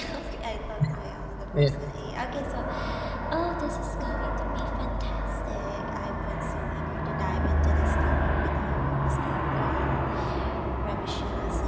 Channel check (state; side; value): identical; both; correlation 1.00